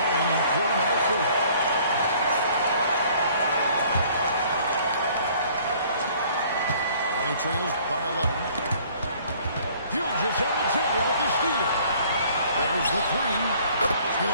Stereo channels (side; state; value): both; inverted; correlation -0.56